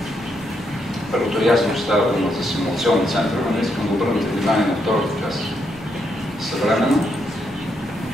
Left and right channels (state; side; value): normal; both; correlation 0.78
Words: Първото ясно, че става дума за симулационен център, но не искам да обърнете внимание на втората част. Съвременно